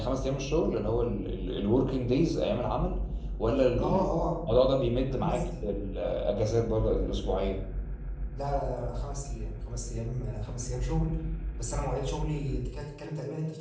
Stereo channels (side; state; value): both; identical; correlation 1.00